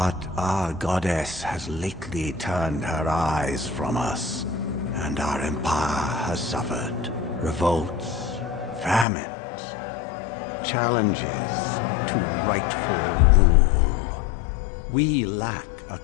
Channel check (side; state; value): right; drops out; at 9.1 s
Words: our goddess has lately turned her eyes from us, and our empire has suffered revolts, famines, challenges to rightful rule. We lack a